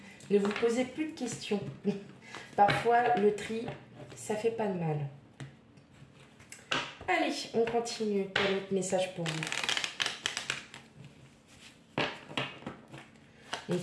Ne vous posez plus de questions. Parfois, le tri, ça fait pas de mal. Allez, on continue. Quel autre message pour vous? Donc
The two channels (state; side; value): identical; both; correlation 1.00